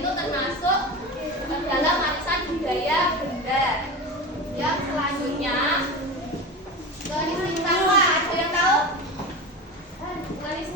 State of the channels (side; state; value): both; normal; correlation 0.26